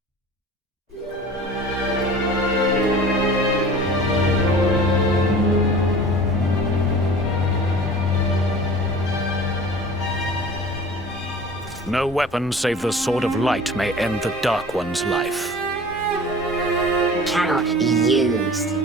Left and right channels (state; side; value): normal; both; correlation 0.42